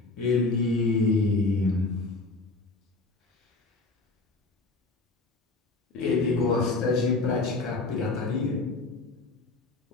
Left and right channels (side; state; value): right; quieter; 3.4 dB